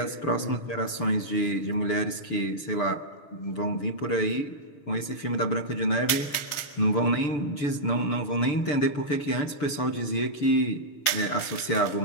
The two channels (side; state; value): right; late; 6.8 ms